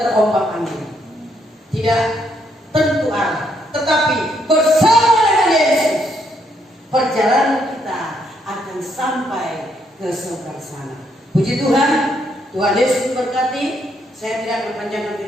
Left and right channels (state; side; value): normal; both; correlation 0.73